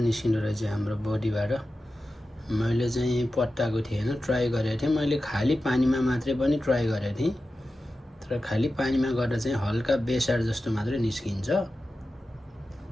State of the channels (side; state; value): both; normal; correlation 0.93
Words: निस्किँदो रहेछ हाम्रो बडीबाट। मैले चाहिँ पट्टाएको थिएँ हैन, ट्राई गरेको थिएँ। मैले खाली पानीमा मात्रै पनि ट्राई गरेको थिएँ, तर खाली पानीमा गर्दा चाहिँ हल्का बेसार जस्तो मात्रै निस्किन्छ।